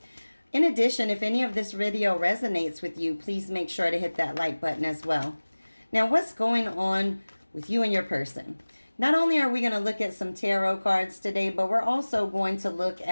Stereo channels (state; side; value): inverted; both; correlation -1.00